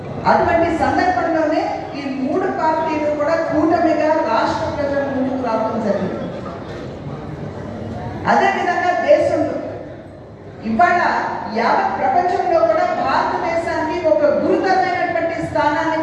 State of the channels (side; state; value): both; identical; correlation 1.00